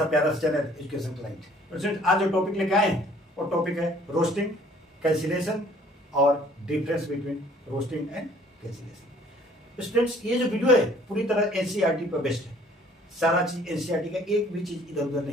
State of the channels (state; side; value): normal; both; correlation 0.57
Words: प्यारा सा चैनल एजुकेशन क्लाइंट। स्टूडेंट आज जो टॉपिक लेके आए हैं वो टॉपिक है रोस्टिंग, कैंसिलेशन और difference between roasting and cancellation. Students ये जो वीडियो है पूरी तरह एनसीईआरटी पर बेस्ड है। सारा चीज एनसीईआरटी का, एक भी चीज इधर उधर